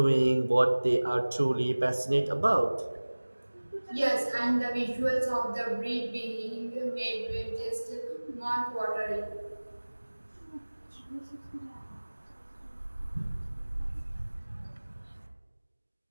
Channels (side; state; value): both; inverted; correlation -1.00